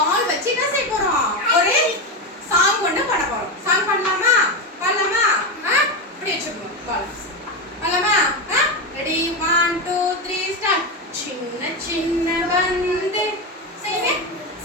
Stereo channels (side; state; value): both; normal; correlation 0.14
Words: வச்சு என்ன செய்ய போறோம் ஒரு சாங் ஒன்னு பாட போறோம் சாங் பண்ணலாமா பண்ணலாமா இப்படி வச்சுக்கோங்க பால் பண்ணலாமா ரெடி 1 2 3 ஸ்டார்ட் சின்ன சின்ன வந்து செய்வே